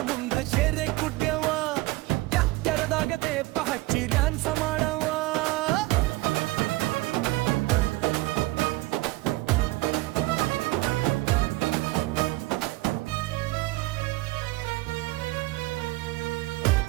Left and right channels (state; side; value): quieter; left; 20.5 dB